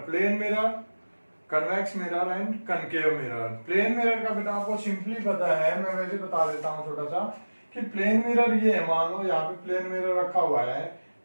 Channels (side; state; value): both; inverted; correlation -1.00